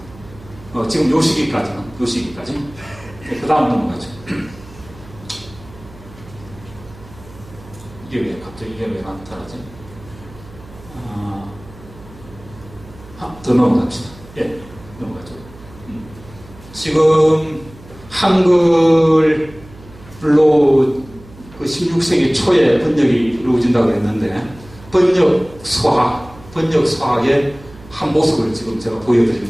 지금 요 시기까지. 그 다음 넘어가죠. 이게 왜 나타나지? 더 넘어갑시다. 예, 넘어가죠. 지금 한글로 그 16세기 초에 번역이 이루어진다고 했는데, 번역 수학의 한 모습을 지금 제가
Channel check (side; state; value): right; noise; hum, 20 dB below the sound